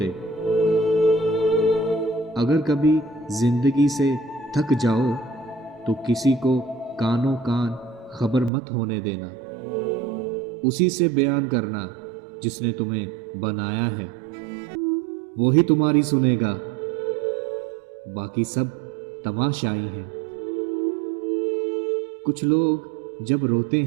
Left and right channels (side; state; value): left; drops out; at 8.5 s